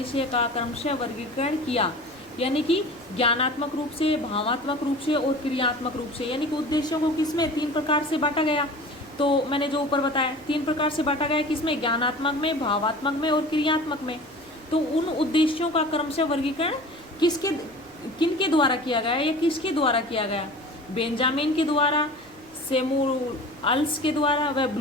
का क्रमशः वर्गीकरण किया। यानी कि ज्ञानात्मक रूप से, भावात्मक रूप से और क्रियात्मक रूप से, यानी कि उद्देश्यों को किसमें? 3 प्रकार से बांटा गया। तो मैंने जो ऊपर बताया 3 प्रकार से बांटा गया, किसमें? ज्ञानात्मक में, भावात्मक में और क्रियात्मक में। तो उन उद्देश्यों का क्रमशः वर्गीकरण किनके द्वारा किया गया या किसके द्वारा किया गया? बेंजामिन के द्वारा, सैमुअल्स के द्वारा व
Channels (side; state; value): left; noise; rumble, 30 dB below the sound